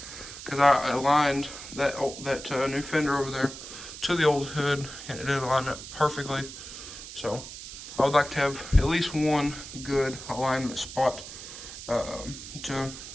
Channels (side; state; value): right; noise; hiss, 12 dB below the sound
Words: because I aligned that new fender over there to the old hood, and it did align up perfectly. So I would like to have at least one good alignment spot to